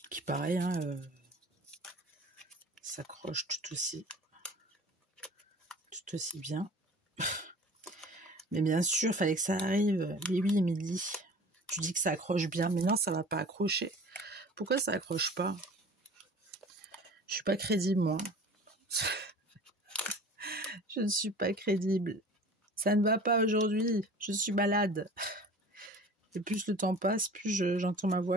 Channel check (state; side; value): normal; both; correlation 0.42